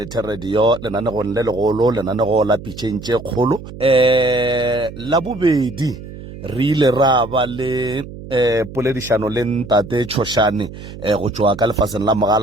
Radio lenanego le legolo lenanego la pitšhentše kgolo la bobedi re ile ra ba le poledišano le ntate Tshošane go tswa ka lefaseng la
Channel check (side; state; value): right; noise; hum, 13 dB below the sound